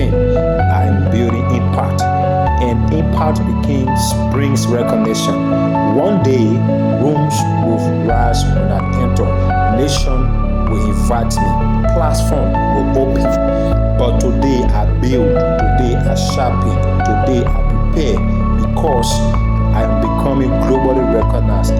I am building impact. And impact brings recognition. One day, rooms will rise when I enter. Nation will invite me. Platform will open. But today I build. Today I sharpen. Today I prepare. Because I am becoming globally recognized,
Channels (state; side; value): identical; both; correlation 1.00